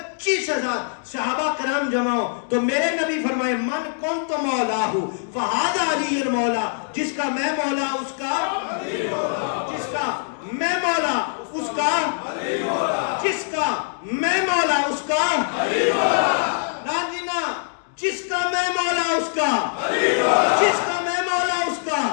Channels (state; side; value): silent; right; digital silence